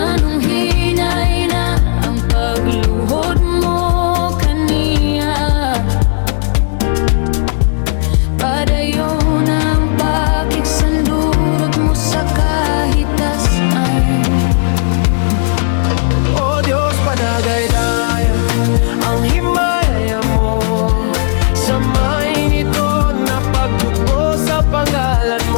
hinay na ang pagluhod mo kaniya? Padayon ang pakiksandurot mo sa kahitasan. O Diyos, padagay-daya ang himaya mo. Samayin ito na pagdugo sa pangalan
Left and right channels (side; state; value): right; silent; digital silence